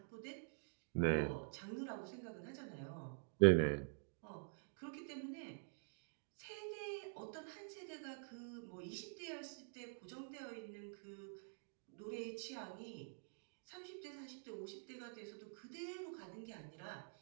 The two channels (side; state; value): left; silent; digital silence